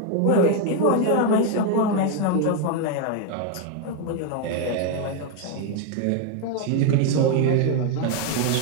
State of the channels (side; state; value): both; different; correlation 0.01